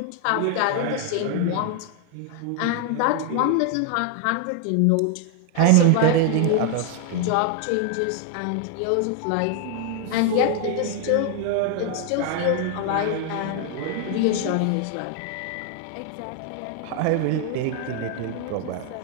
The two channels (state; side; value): different; both; correlation 0.00